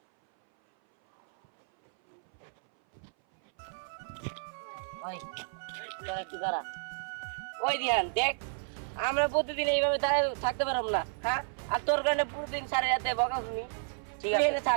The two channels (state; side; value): silent; left; 56 dB below the other